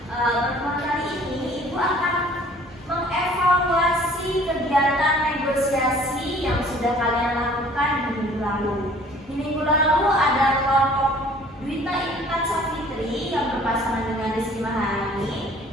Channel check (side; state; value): both; normal; correlation 0.53